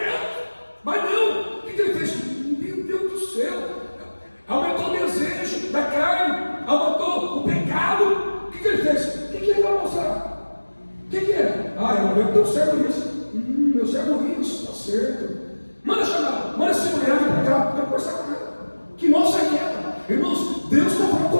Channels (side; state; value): both; inverted; correlation -1.00